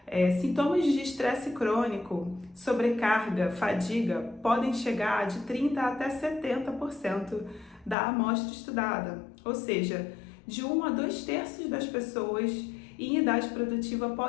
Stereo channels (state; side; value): drops out; right; at 8.0 s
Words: sintomas de estresse crônico, sobrecarga, fadiga podem chegar de 30% até 70% da amostra estudada, ou seja, de 1 a 2/3 das pessoas em idade produtiva